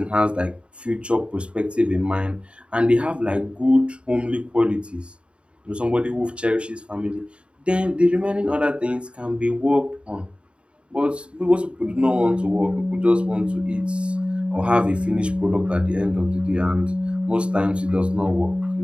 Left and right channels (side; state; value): left; late; 0.057 ms